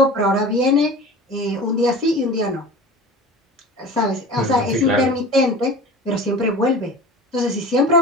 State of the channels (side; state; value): both; normal; correlation 0.36